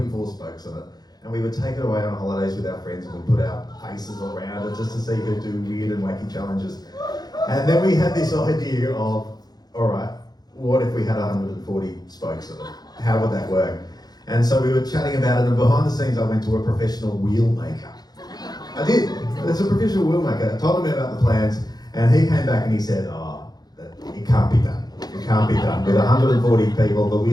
spokes on it, and we would take it away on holidays with our friends and we'd put our faces all around it just to see who'd do weird and wacky challenges. And then we had this idea of, alright, what if we had 140 spokes on it? How would that work? And so we were chatting about it, and behind the scenes I went to a professional wheel maker. I did. There's a professional wheel maker. I told him about the plans, and he came back and he said, it can't be done. It can't be done. With 140 people, the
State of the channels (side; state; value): right; late; 0.19 ms